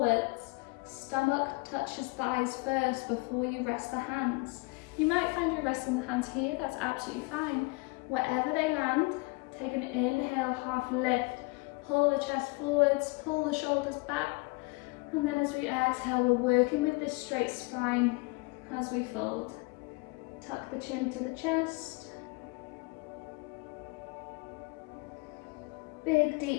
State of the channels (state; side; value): quieter; right; 27.2 dB